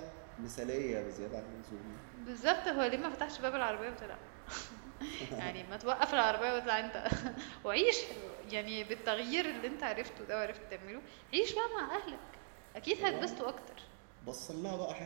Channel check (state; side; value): silent; left; digital silence